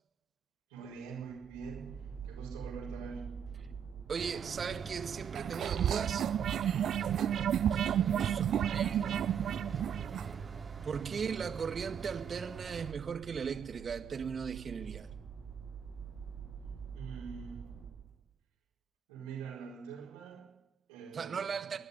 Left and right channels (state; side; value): quieter; left; 7.9 dB